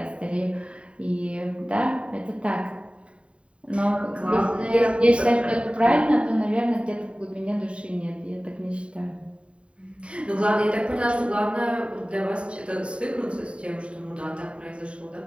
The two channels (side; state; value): left; late; 0.059 ms